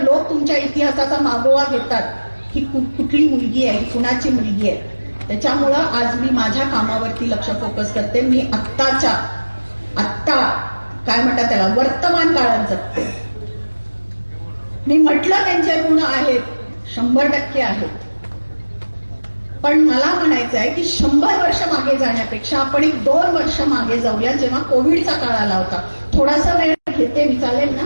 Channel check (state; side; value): inverted; both; correlation -1.00